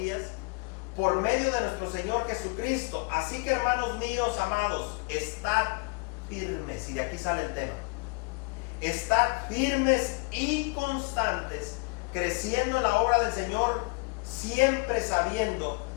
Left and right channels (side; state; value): right; quieter; 32.0 dB